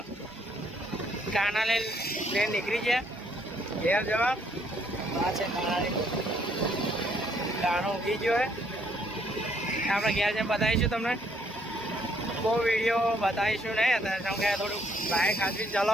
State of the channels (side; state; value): both; normal; correlation 0.68